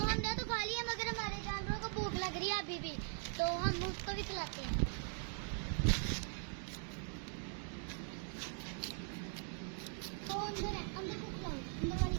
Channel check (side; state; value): left; silent; 50 dB below the other